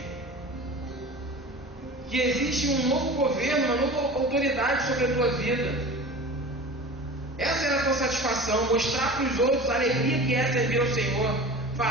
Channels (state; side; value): normal; both; correlation 0.36